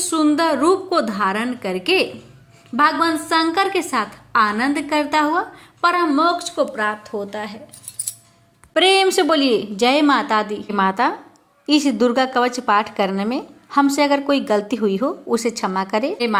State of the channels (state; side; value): identical; both; correlation 1.00